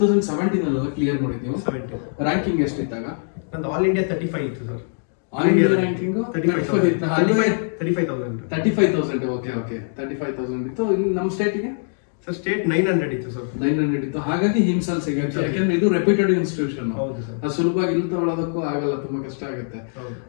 ಕ್ಲಿಯರ್ ಮಾಡಿದ್ದೀವಿ. ರ್ಯಾಂಕಿಂಗ್ ಎಷ್ಟಿದ್ದಾಗ? ನಂದು ಆಲ್ ಇಂಡಿಯಾ 35 ಇತ್ತು sir. All India ranking 35,000. Okay 35,000 ಇತ್ತು. ನಮ್ಮ ಸ್ಟೇಟಿಗೆ ಸರ್ ಸ್ಟೇಟ್ 900 ಇತ್ತು ಸರ್. 900 ಇತ್ತು. ಹಾಗಾಗಿ ಹಿಮ್ಸಲ್ ಸಿಗುತ್ತೆ, ಯಾಕಂದ್ರೆ ಇದು ರೆಪ್ಯೂಟೆಡ್ ಇನ್ಸ್ಟಿಟ್ಯೂಷನ್. ಅದು ಸುಲಭವಾಗಿ ಇಲ್ಲಿ ತಗೊಳ್ಳೋದಕ್ಕೂ ಆಗಲ್ಲ, ತುಂಬಾ ಕಷ್ಟ ಆಗುತ್ತೆ.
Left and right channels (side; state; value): right; silent; digital silence